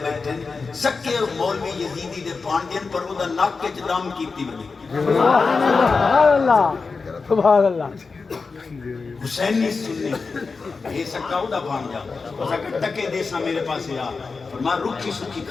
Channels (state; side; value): quieter; right; 4.5 dB